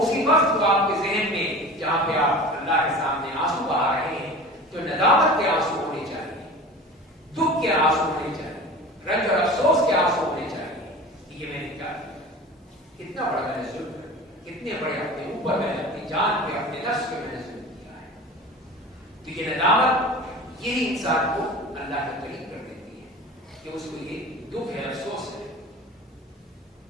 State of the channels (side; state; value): both; normal; correlation 0.37